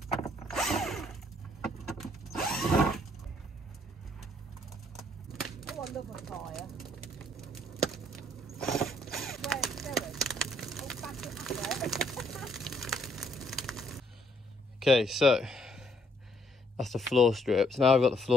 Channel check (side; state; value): both; normal; correlation 0.68